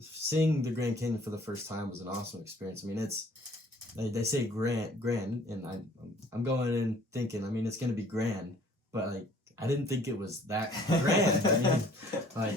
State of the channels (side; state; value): both; normal; correlation 0.55